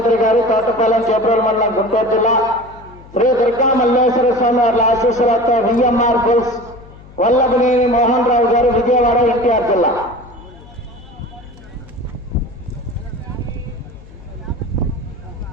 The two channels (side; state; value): left; noise; hum, 21 dB below the sound